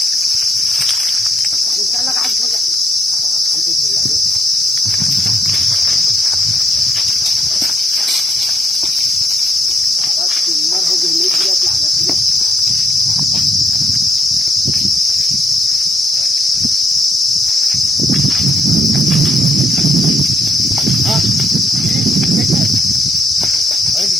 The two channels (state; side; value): normal; both; correlation 0.73